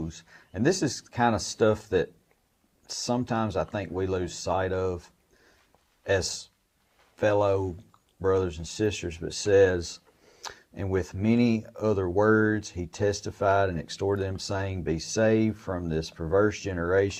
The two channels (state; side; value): identical; both; correlation 1.00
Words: And this is kind of stuff that sometimes I think we lose sight of as fellow brothers and sisters, but says, and with many other words he testified and exhorted them, saying, be saved from this perverse